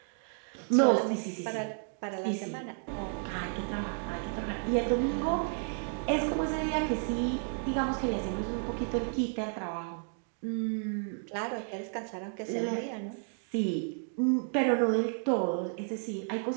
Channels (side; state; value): left; silent; 56 dB below the other